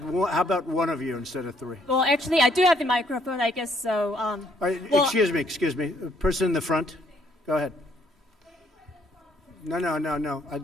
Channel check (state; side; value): normal; both; correlation 0.68